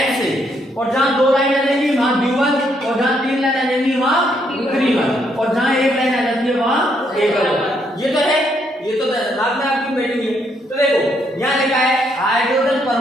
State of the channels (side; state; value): both; normal; correlation 0.73